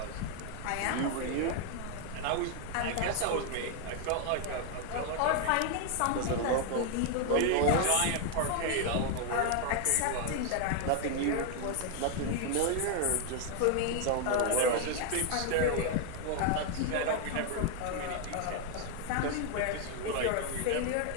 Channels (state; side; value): different; both; correlation 0.00